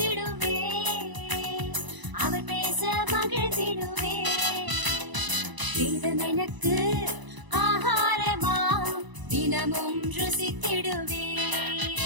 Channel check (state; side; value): late; left; 1.0 ms